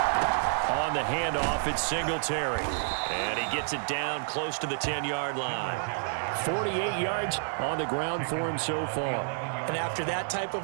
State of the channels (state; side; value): silent; left; 58 dB below the other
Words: On the handoff, it's Singletary. And he gets it down close to the 10-yard line. 48 yards on the ground for him so far. And after that type